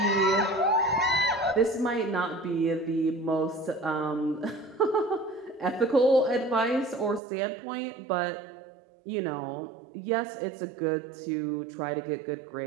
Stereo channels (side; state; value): left; drops out; at 7.2 s